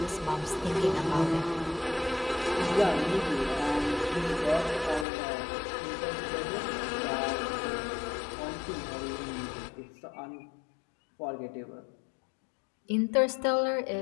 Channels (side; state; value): right; drops out; at 5.1 s